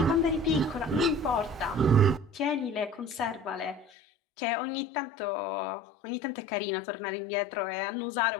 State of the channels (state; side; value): drops out; right; at 3.9 s